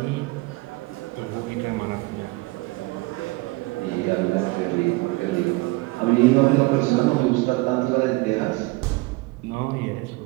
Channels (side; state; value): left; quieter; 23.5 dB